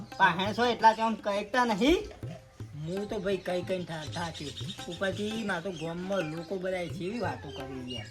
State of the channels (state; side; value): identical; both; correlation 1.00